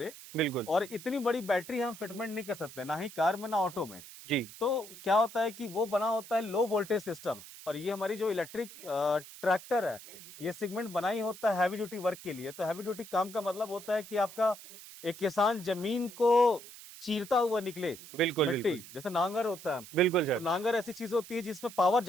बिल्कुल। और इतनी बड़ी बैटरी हम फिटमेंट नहीं कर सकते, ना ही कार में ना ऑटो में। जी तो क्या होता है कि वो बना होता है लो वोल्टेज सिस्टम। और ये हमारी जो इलेक्ट्रिक ट्रैक्टर है, ये सेगमेंट बना ही होता है हैवी ड्यूटी वर्क के लिए। तो हैवी ड्यूटी काम का मतलब होता है कि आपका एक किसान जमीन को चीरता हुआ निकले। बिल्कुल मिट्टी बिल्कुल। जैसे नांगर होता है, बिल्कुल तो सर। नांगर ऐसी चीज होती है जिसमें पावर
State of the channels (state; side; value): noise; right; hiss, 16 dB below the sound